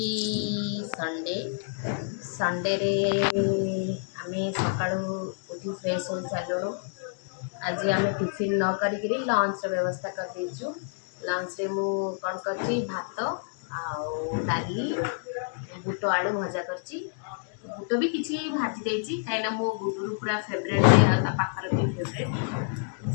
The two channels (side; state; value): right; silent; digital silence